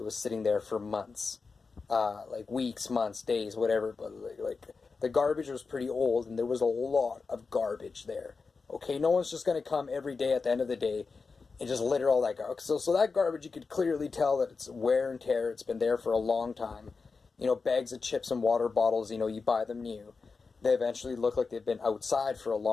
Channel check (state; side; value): quieter; right; 4.6 dB